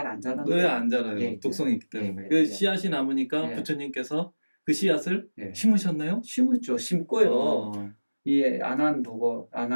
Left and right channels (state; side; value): inverted; both; correlation -1.00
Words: 안 자라는 왜 안 자라요? 독성이 있기 때문에. 그 씨앗이 남으니까 부처님께서 그 씨앗을 심으셨나요? 심었죠. 심고요. 이 안한 보고